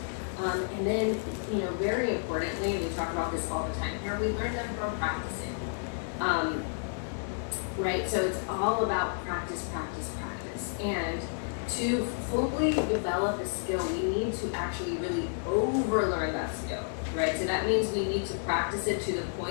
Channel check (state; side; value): silent; right; 57 dB below the other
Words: And then, very importantly, and we talk about this all the time here, we learn them from practicing. Right? So it's all about practice. And to fully develop a skill, we need to actually really overlearn that skill, right? So that means we need to practice it to the